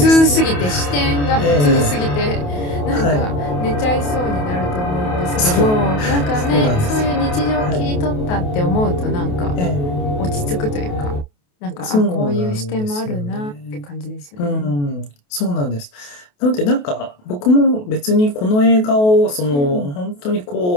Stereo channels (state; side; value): late; right; 28 ms